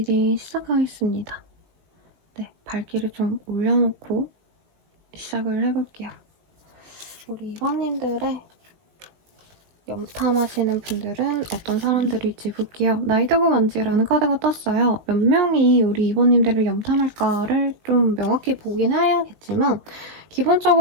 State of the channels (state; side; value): late; left; 19 ms